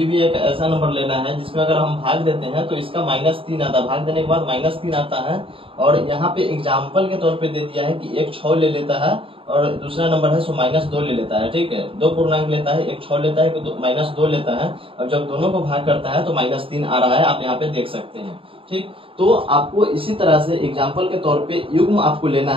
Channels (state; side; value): late; left; 0.26 ms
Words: भी एक ऐसा नंबर लेना है जिसमें अगर हम भाग देते हैं तो इसका -3 आता है, भाग देने के बाद -3 आता है। और यहाँ पे एग्जाम्पल के तौर पे दे दिया है कि एक 6 ले लेता है और दूसरा नंबर है सो -2 ले लेता है। ठीक है, 2 पूर्णांक लेता है, एक 6 लेता है, -2 लेता है। और जब दोनों को भाग करता है तो -3 आ रहा है, आप यहाँ पे देख सकते हैं। ठीक, तो आपको इसी तरह से एग्जाम्पल के तौर पे युग्म आपको लेना